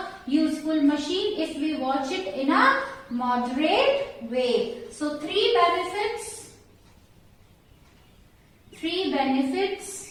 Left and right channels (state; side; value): identical; both; correlation 1.00